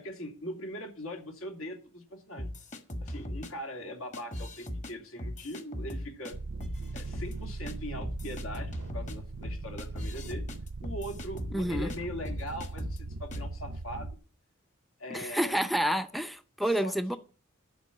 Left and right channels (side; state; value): both; normal; correlation 0.75